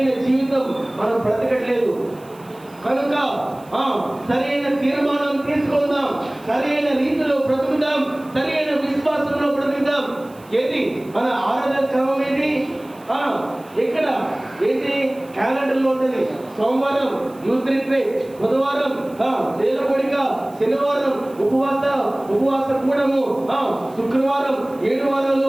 జీవితం మనం బ్రతకట్లేదు. కనుక సరైన తీర్మానం తీసుకుందాం, సరైన రీతిలో బ్రతుకుదాం, సరైన విశ్వాసంలో బ్రతుకుదాం. ఏది మన ఆరాధన క్రమం ఏది? ఇక్కడ ఏంటి? క్యాలెండర్లో ఉంటుంది. సోమవారం యూత్ రిట్రీట్, బుధవారం వేల కోడిక, శనివారం ఉపవాస కూడము, శుక్రవారం 7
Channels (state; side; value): noise; right; hiss, 27 dB below the sound